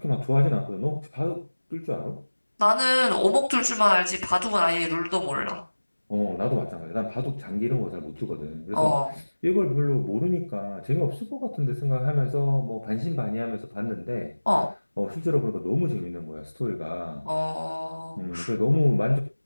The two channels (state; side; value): inverted; both; correlation -1.00